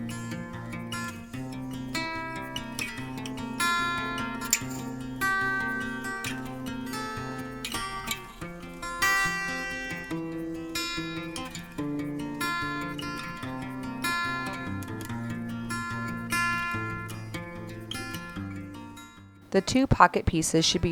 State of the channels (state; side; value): identical; both; correlation 1.00